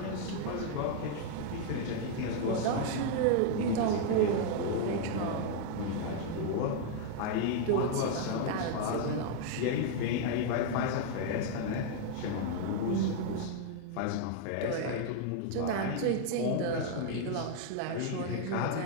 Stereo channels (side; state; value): both; different; correlation 0.00